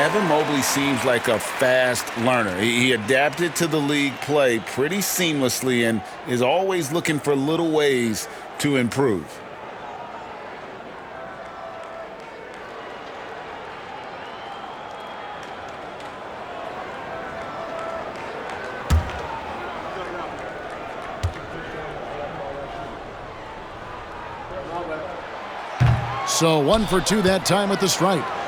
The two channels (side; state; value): both; identical; correlation 1.00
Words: Mobley seems like a fast learner. He adapted to the league play pretty seamlessly and is always looking for little ways to improve. So 1 for 2 that time at the stripe.